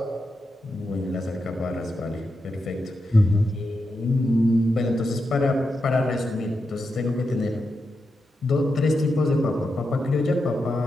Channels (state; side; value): normal; both; correlation 0.87